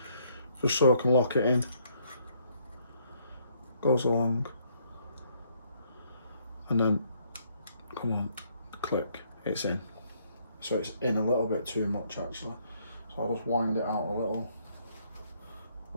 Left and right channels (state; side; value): inverted; both; correlation -0.68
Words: just so I can lock it in. Goes along, and then come on, click, it's in. So it's in a little bit too much actually, so I'll just wind it out a